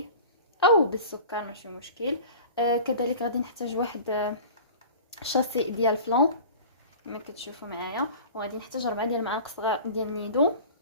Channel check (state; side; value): inverted; both; correlation -0.39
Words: او بالسكر ماشي مشكل. كذلك غادي نحتاج واحد شاسي ديال فلان كما كتشوفوا معايا، وغادي نحتاج 4 ديال المعالق صغار ديال نيدو،